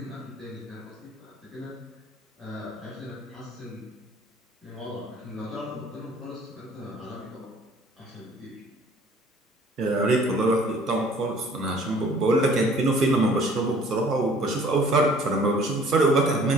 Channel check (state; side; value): normal; both; correlation 0.53